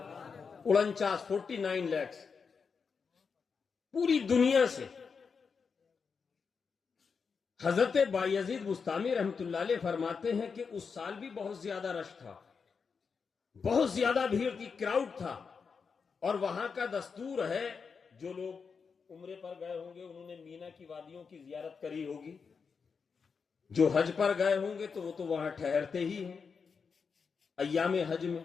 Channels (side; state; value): right; quieter; 5.6 dB